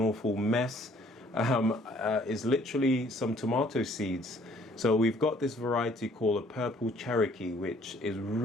awful mess, is literally some tomato seeds. So we've got this variety called a purple Cherokee, which is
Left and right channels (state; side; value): normal; both; correlation 0.60